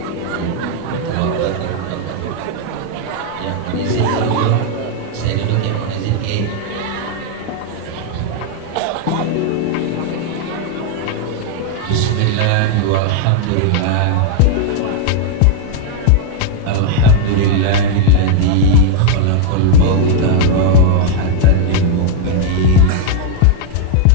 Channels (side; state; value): both; different; correlation 0.00